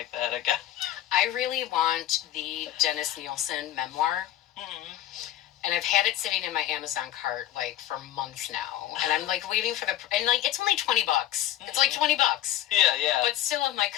that again. I really want the Dennis Nielsen memoir. And I've had it sitting in my Amazon cart like for months now, and I'm like waiting for and like it's only $20. It's like $20. Yeah. But still, I'm like,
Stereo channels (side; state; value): right; quieter; 13.1 dB